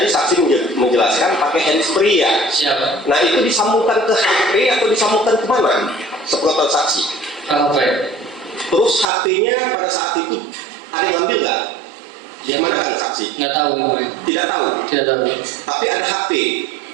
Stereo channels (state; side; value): drops out; left; at 9.1 s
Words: saksi menjelaskan pakai handsfree ya. Nah itu disambungkan ke HP atau disambungkan ke mana? Sepengetahuan saksi. Terus HP-nya pada saat itu ada yang ngambil nggak? Di mana kan saksi? Nggak tahu. Tidak tahu. Tapi ada HP.